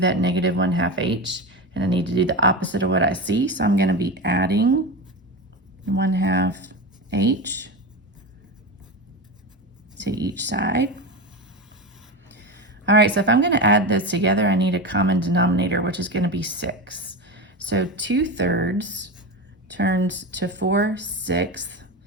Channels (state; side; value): normal; both; correlation 0.21